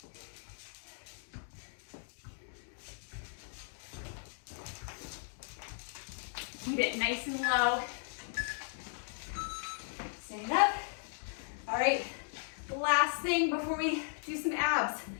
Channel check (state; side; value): silent; right; digital silence